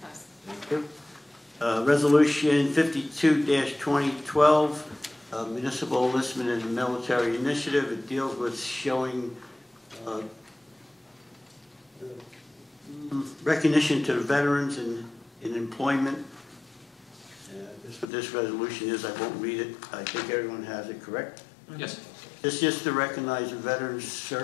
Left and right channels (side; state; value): right; drops out; at 18.1 s